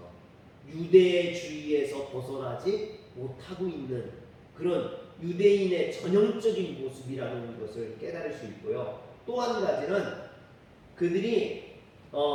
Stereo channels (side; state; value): both; identical; correlation 1.00